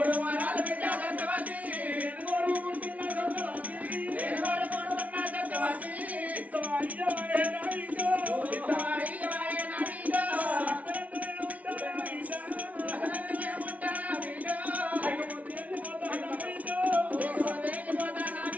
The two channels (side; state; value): left; late; 0.069 ms